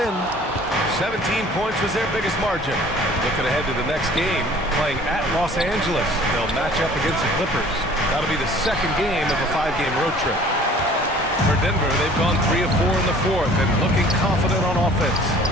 17 points was their biggest margin. Looking ahead to the next game, playing at Los Angeles. They'll match up against the Clippers. That'll be the second game of a 5-game road trip. For Denver, they've gone 3 of 4 in the 4th and looking confident on offense.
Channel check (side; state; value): both; normal; correlation 0.50